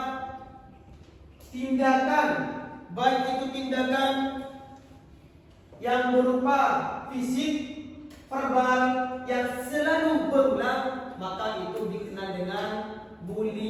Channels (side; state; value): both; identical; correlation 1.00